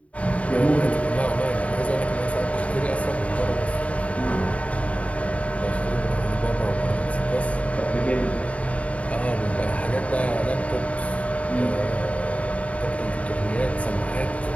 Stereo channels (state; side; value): late; right; 0.065 ms